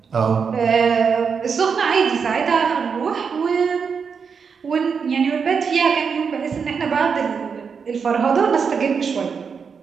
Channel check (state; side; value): quieter; left; 6.0 dB